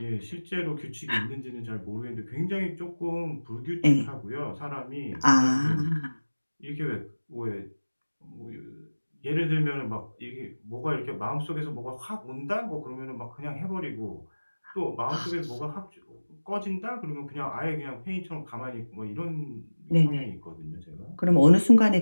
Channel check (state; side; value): inverted; both; correlation -1.00